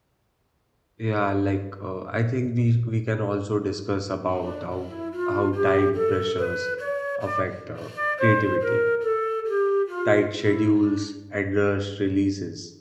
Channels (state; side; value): identical; both; correlation 1.00